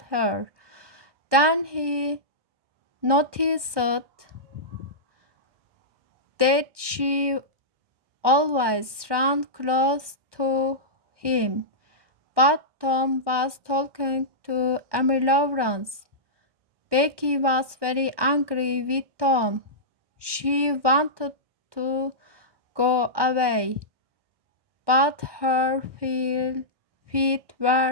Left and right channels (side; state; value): left; late; 1.2 ms